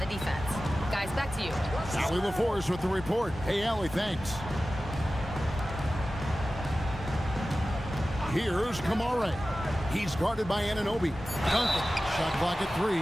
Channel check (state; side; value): normal; both; correlation 0.95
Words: defense. Guys, back to you. Allie LaForce with the report. Hey, Allie, thanks. Here's Kamara. He's guarded by Anunoby. Duncan, shot clock at 3.